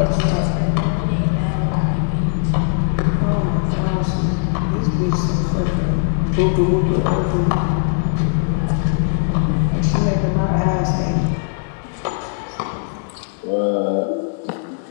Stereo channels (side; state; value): right; silent; digital silence